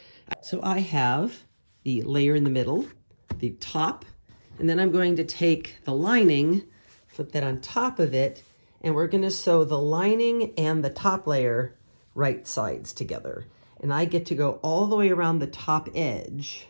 So I have the layer in the middle, the top, and then I'm going to take the lining, flip that on top of it, and we're going to sew the lining and the top layer right sides together. And I get to go all the way around the top edge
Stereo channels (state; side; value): inverted; both; correlation -1.00